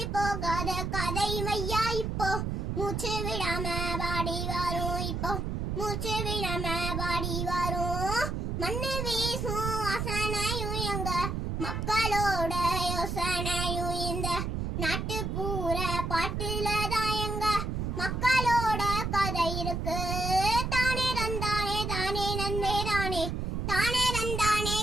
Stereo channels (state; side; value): noise; right; rumble, 2 dB below the sound